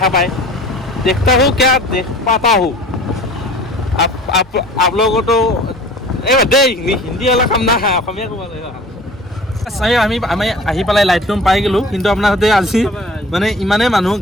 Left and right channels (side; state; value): both; normal; correlation 0.45